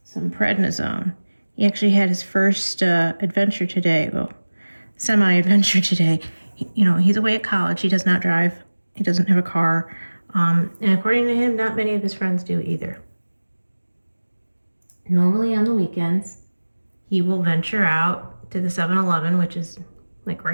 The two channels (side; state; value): both; inverted; correlation -1.00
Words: some prednisone. He actually had his first adventure today. Well, semi-adventure today. He's away at college. He does not drive. He doesn't have a car. And according to him, not many of his friends do either. Normally on the weekends, he will venture out to the 7-Eleven, which is like